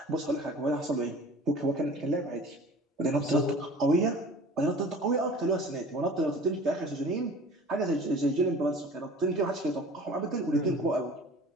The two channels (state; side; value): normal; both; correlation 0.44